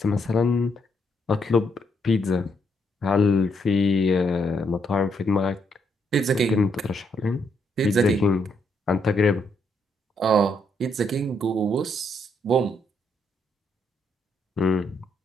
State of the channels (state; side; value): normal; both; correlation 0.75